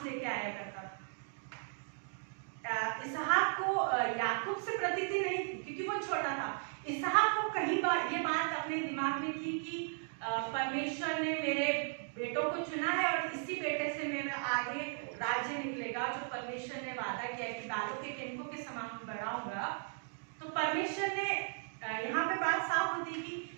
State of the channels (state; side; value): silent; left; 53 dB below the other